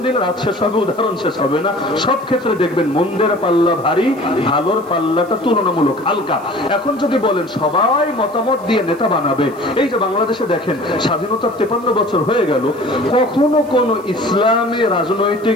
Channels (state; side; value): noise; right; hiss, 26 dB below the sound